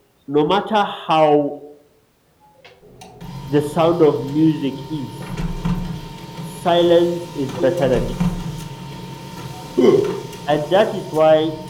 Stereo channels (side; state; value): both; identical; correlation 1.00